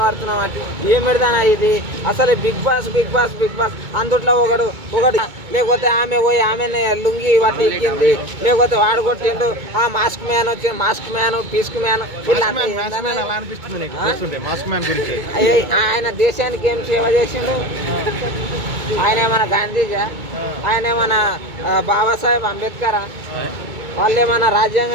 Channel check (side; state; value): left; late; 2.2 ms